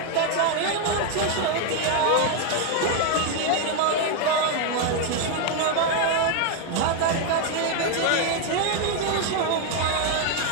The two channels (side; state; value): both; different; correlation 0.01